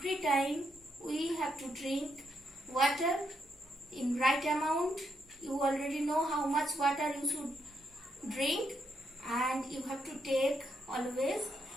time we have to drink water in right amount. You already know how much water you should drink, and you have to take always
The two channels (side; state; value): both; normal; correlation 0.78